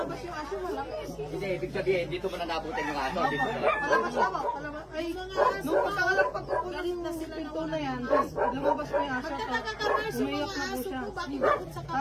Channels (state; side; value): identical; both; correlation 1.00